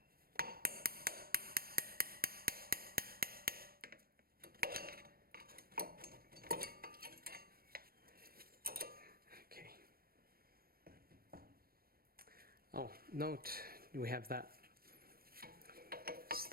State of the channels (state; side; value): late; left; 0.44 ms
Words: Okay. Oh, note we have that